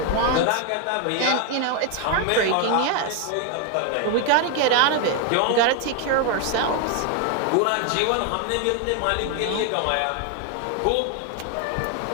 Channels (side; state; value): both; different; correlation 0.01